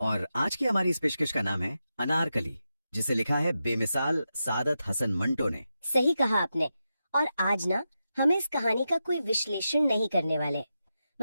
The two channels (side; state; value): both; inverted; correlation -0.89